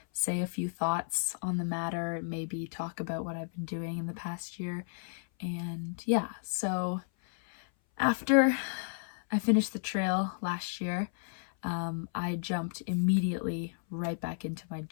say a few thoughts on the matter, maybe talk about what I've been doing in the past year. And yeah, so after I finished the trail last year, I jumped immediately right back into my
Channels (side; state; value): right; silent; 56 dB below the other